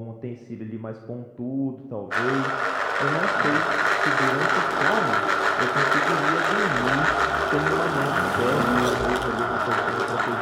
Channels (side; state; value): both; identical; correlation 1.00